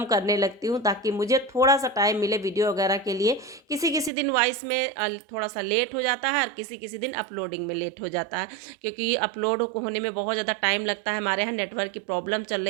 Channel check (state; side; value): drops out; left; at 4.1 s